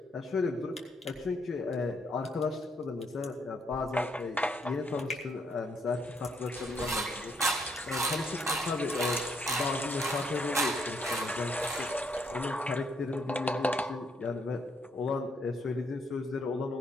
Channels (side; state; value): both; normal; correlation 0.72